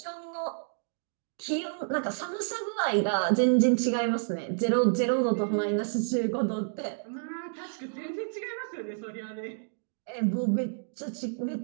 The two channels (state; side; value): silent; left; digital silence